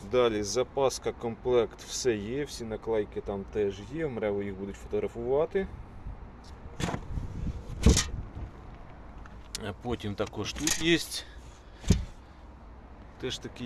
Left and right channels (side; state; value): both; identical; correlation 1.00